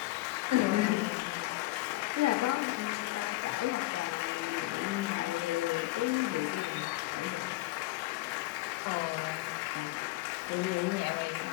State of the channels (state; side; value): quieter; right; 19.2 dB